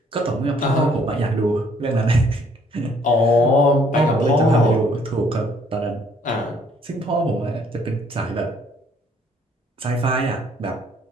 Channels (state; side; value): normal; both; correlation 0.63